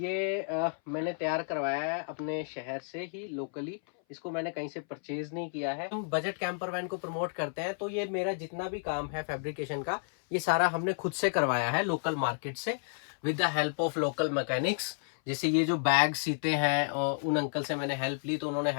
मैंने तैयार करवाया है अपने शहर से ही लोकली। इसको मैंने कहीं से परचेज नहीं किया है। हम बजट कैंपर वैन को प्रमोट करते हैं, तो ये मेरा जितना भी काम है फैब्रिकेशन का, ये सारा हमने खुद से करवाया है लोकल मार्केट से, with the help of local mechanics. जैसे ये जो बैग सीते हैं, और उन अंकल से मैंने हेल्प ली तो उन्होंने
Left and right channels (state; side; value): silent; right; 57 dB below the other